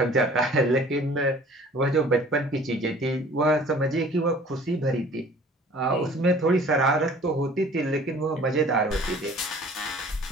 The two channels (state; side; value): normal; both; correlation 0.50